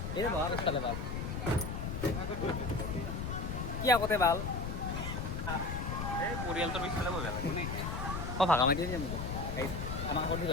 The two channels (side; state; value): left; noise; rumble, 4 dB below the sound